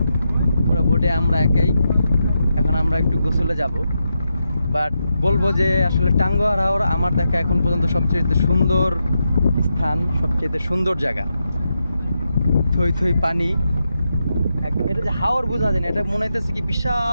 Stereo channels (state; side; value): inverted; both; correlation -0.85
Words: পুরো বোটে আমরা একাই। এখন আমরা একটু গোসলে যাব, বাট বলবো যে আসলে টাঙ্গুয়ার হাওর আমার দেখা এখন পর্যন্ত সবচেয়ে সুন্দর স্থান, সবচেয়ে সুন্দর জায়গা। থই থই পানি, এটা যে হাওর বোঝা যায় না, এটা মনে হইতেছে কি